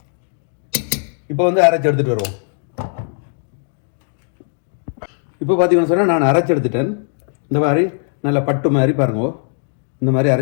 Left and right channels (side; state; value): right; silent; 67 dB below the other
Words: இப்போ அரைச்சி எடுத்துகிட்டு வருவோம். இப்போ பார்த்தீங்கன்னு சொன்னால் நான் அரைச்சி எடுத்துட்டேன். இந்த மாதிரி நல்ல பட்டு மாதிரி பாருங்க, இந்த மாதிரி